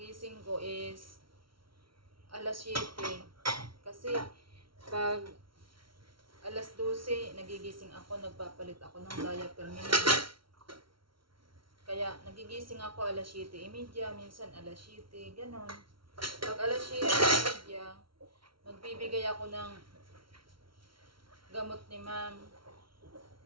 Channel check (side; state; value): left; late; 0.74 ms